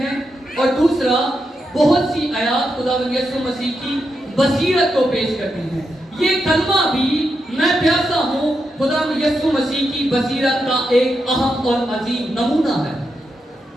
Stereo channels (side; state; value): both; normal; correlation 0.84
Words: اور دوسرا، بہت سی آیات خدا یسوع مسیح کی بصیرت کو پیش کرتی ہیں. یہ کلمہ بھی میں پیاسا ہوں خدا یسوع مسیح کی بصیرت کا ایک اہم اور عظیم نمونہ ہے.